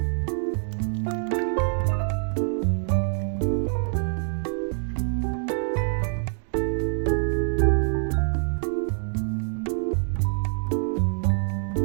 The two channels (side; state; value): left; silent; digital silence